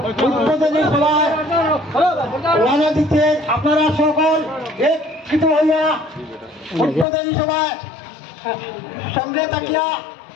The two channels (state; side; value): drops out; right; at 7.1 s